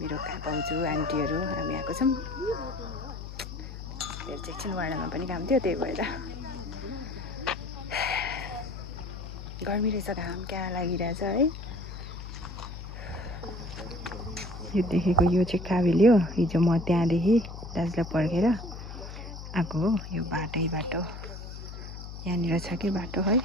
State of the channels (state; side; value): noise; left; hum, 10 dB below the sound